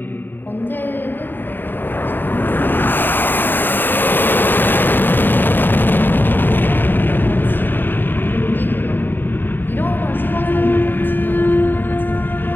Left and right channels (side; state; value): right; late; 0.093 ms